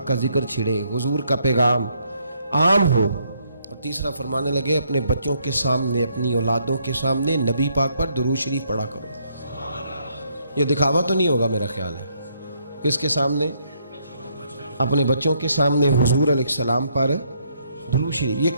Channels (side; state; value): both; inverted; correlation -0.72